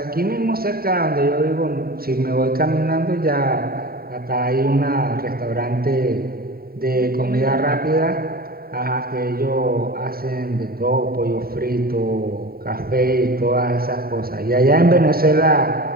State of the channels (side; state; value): left; late; 0.43 ms